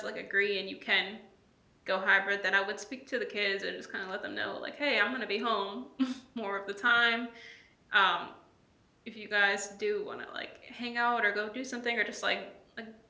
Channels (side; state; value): both; identical; correlation 1.00